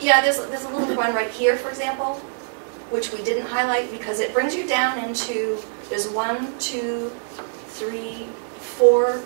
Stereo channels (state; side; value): silent; left; 61 dB below the other